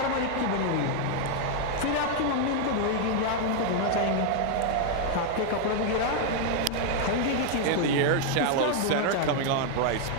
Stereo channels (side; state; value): both; different; correlation 0.00